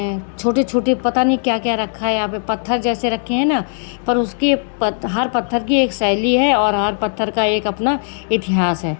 छोटे छोटे पता नहीं क्या क्या रखा है यहाँ पे। पत्थर जैसे रखे हैं ना, पर उसकी हर पत्थर की एक शैली है और हर पत्थर का एक अपना इतिहास है,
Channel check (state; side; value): silent; right; digital silence